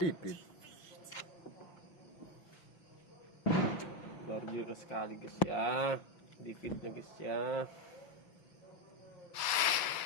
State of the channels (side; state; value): right; late; 5.9 ms